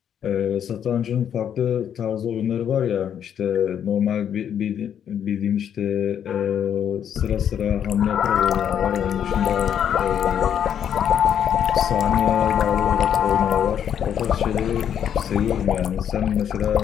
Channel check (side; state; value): right; quieter; 9.0 dB